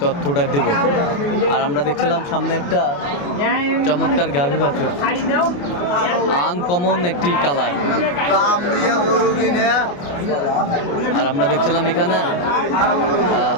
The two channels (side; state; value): right; late; 28 ms